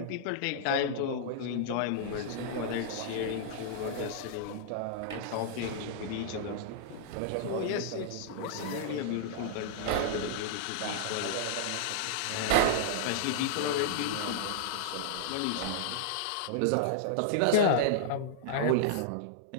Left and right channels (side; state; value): both; different; correlation -0.01